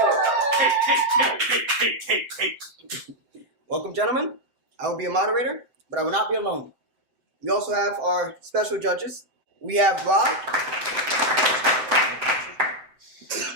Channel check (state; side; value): late; left; 7.8 ms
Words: Welcome, gentlemen. I will be a moderator, but I will not be alone. We also have our special judges. We have Rob